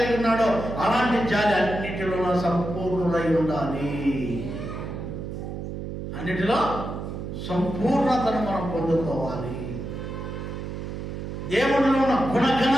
ఉన్నాడో అలాంటి జాలి అన్నిటిలో సంపూర్ణులై ఉండాలి. అన్నిటిలో సంపూర్ణతను మనం పొందుకోవాలి. దేవుడిలో ఉన్న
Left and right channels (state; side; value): noise; right; hum, 7 dB below the sound